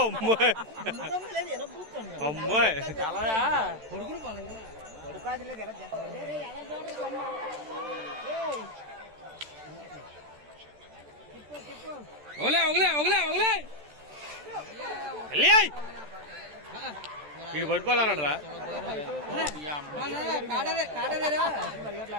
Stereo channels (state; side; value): late; left; 13 ms